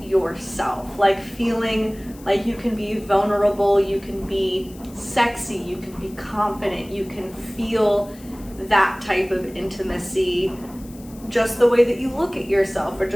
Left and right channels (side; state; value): left; noise; hiss, 23 dB below the sound